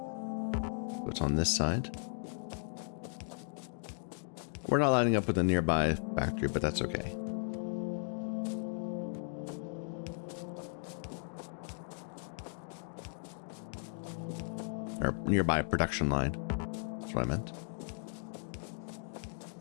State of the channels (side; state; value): right; silent; digital silence